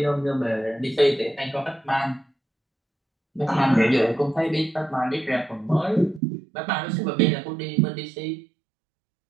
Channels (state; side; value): drops out; left; at 6.2 s